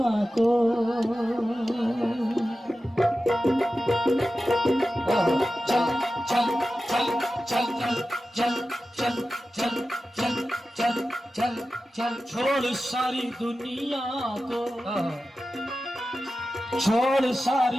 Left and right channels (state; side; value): normal; both; correlation 0.93